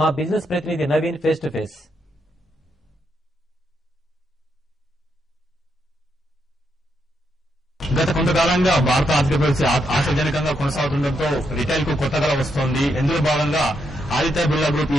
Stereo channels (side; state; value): both; normal; correlation 0.80